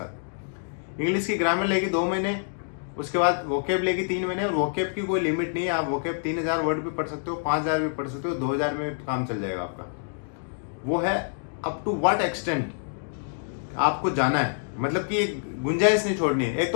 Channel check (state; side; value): silent; right; digital silence